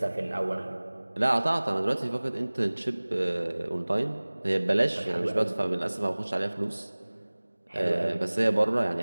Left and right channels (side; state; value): both; inverted; correlation -1.00